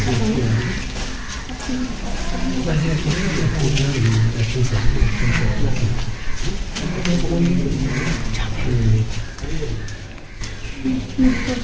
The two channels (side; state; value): both; identical; correlation 1.00